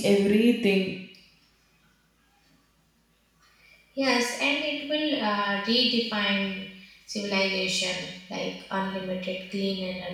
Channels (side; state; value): both; identical; correlation 1.00